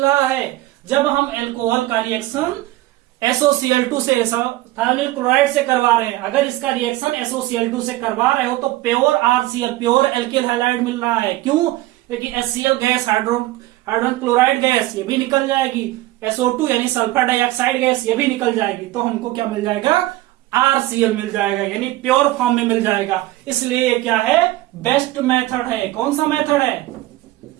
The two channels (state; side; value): quieter; left; 17.2 dB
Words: रहा है, जब हम एल्कोहल का रिएक्शन SOCl2 से थायोनिल क्लोराइड से करवा रहे हैं। अगर इसका रिएक्शन SOCl2 से करवा रहे हो तो pure RCl pure alkyl halide मिल रहा है। क्यों, क्योंकि HCl gas, hydrogen chloride gas ये भी निकल जाएगी, SO2 यानी सल्फर डाइऑक्साइड गैस ये भी निकल जाएगी, तो हमको क्या मिल जाएगा, RCl मिल जाएगा, यानी प्योर फॉर्म में मिल जाएगा। इसलिए क्या है, बेस्ट मेथड है। कौन सा मेथड है,